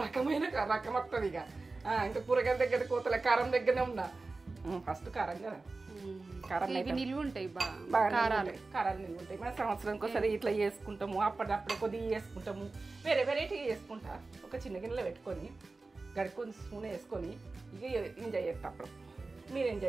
రకం వస్తుంది. ఇంకా కూరగాయల దగ్గర కోతలే, కారం దగ్గరనే ఉన్నా. ఫస్ట్ కారం కదా, కారం నిల్వ ఉంటాయి, కారాలు నిల్వ ఉంటాయి. మన సంవత్సరానికి ఒకసారి ఇట్లా చేసుకుంటాము. అప్పుడప్పుడే కొద్దిగా చేసుకుంటాము, వేరే వెరైటీగా చేసుకుంటా. ఒక చిన్న గిన్నెలో పెట్టుకొని గడుకొని స్పూన్ వేసుకొని ఇక ఎంజాయ్ చేస్తా. అప్పుడు మీరు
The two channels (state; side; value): quieter; left; 3.6 dB